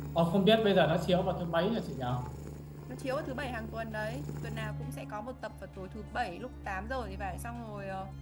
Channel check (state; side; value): identical; both; correlation 1.00